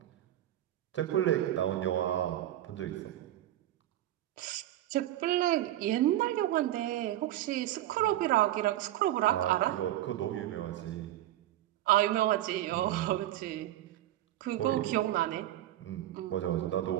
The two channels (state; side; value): quieter; left; 13.7 dB